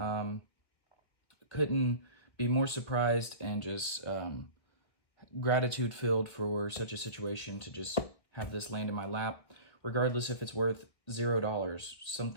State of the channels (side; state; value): right; late; 1.6 ms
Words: Couldn't be more surprised and just gratitude filled for such a situation to just have this land in my lap, regardless if it's worth $0.